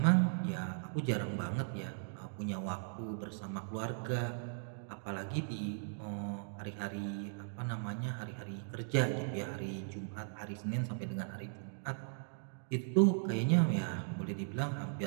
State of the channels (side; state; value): left; silent; digital silence